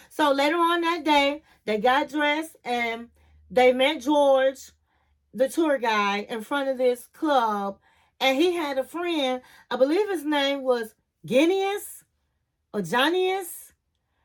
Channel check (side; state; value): both; identical; correlation 1.00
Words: So later on that day, they got dressed and they met George, the tour guide, in front of this club. And he had a friend, I believe his name was Genius or Johnnyus.